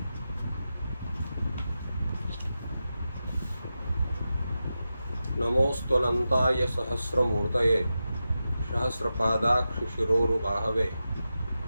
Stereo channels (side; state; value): both; inverted; correlation -0.91